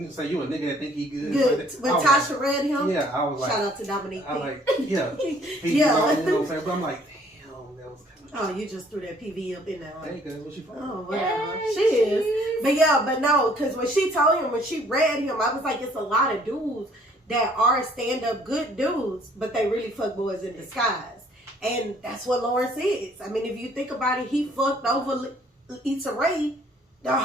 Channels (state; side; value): normal; both; correlation 0.60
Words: said you a nigga that think he good. Good. When Tasha read him. Yeah, I was like, shout out to Dominique. I like, yeah, yeah. You know what I'm saying? But I'm like, damn, that was kind of. Oh, you just threw that PV up in there. Hey, cause what she from? Oh, whatever. She is. But yeah, but no, because when she told him, when she read him, I was like, it's a lot of dudes that are stand-up good dudes, but they really fuck boys in disguise. And that's what Lawrence is. I mean, if you think about it, he fucked over Issa Rae the